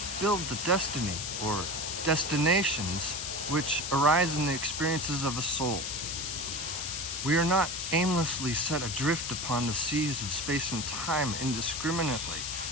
build the destiny or destinations which arise in the experiences of a soul. We are not aimlessly set adrift upon the seas of space and time indiscriminately.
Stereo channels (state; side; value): noise; left; hiss, 4 dB below the sound